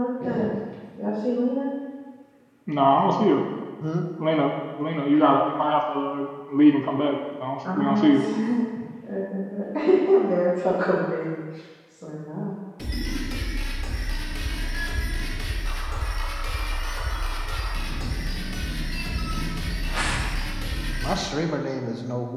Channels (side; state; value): both; identical; correlation 1.00